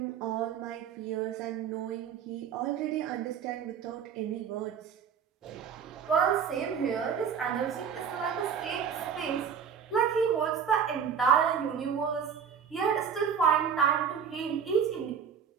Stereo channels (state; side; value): quieter; left; 7.4 dB